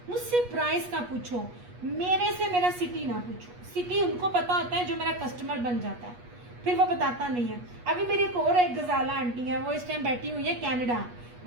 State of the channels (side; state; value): left; late; 8.3 ms